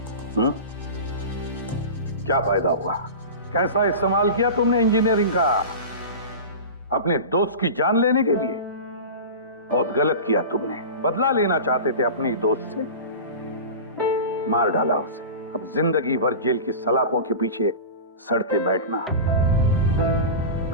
क्या फायदा हुआ? कैसा इस्तेमाल किया तुमने इंजीनियरिंग का? अपने दोस्त की जान लेने के लिए? बहुत गलत किया तुमने। बदला लेना चाहते थे अपने दोस्त से, मार डाला उसे। अब जिंदगी भर जेल की सलाखों के पीछे सड़ते बैठना।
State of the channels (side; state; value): both; inverted; correlation -0.31